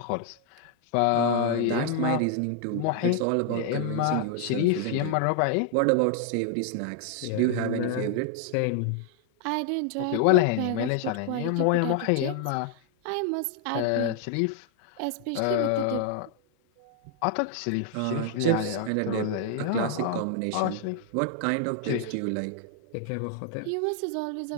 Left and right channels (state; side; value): different; both; correlation 0.00